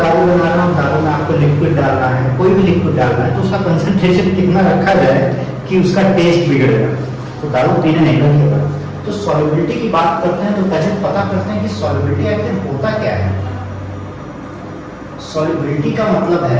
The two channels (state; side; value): identical; both; correlation 1.00